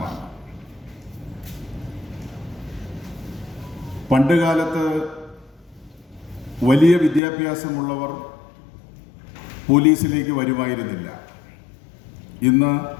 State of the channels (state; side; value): drops out; right; at 7.2 s